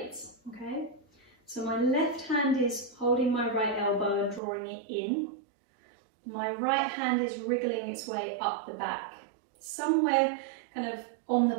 okay? So my left hand is holding my right elbow and drawing it in. My right hand is wriggling its way up the back. Somewhere kind of on the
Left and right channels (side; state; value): left; drops out; at 4.4 s